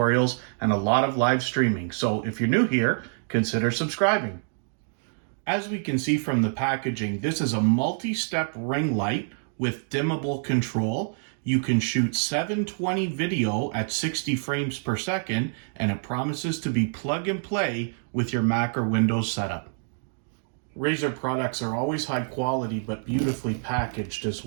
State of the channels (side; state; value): left; silent; digital silence